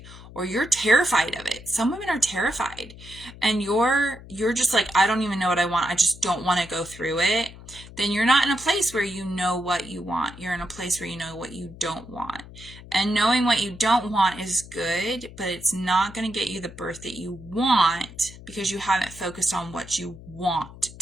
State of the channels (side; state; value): left; noise; hum, 17 dB below the sound